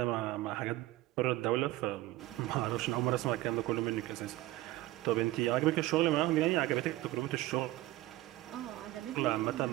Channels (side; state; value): left; quieter; 17.4 dB